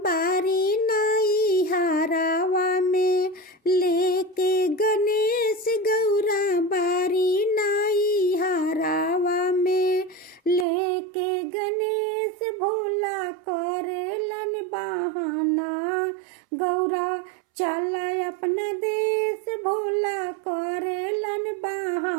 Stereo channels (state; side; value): drops out; left; at 10.7 s